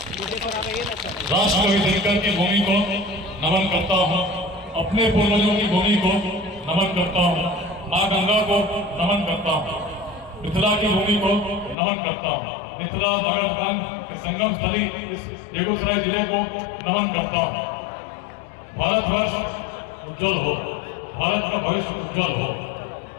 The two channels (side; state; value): right; drops out; at 11.8 s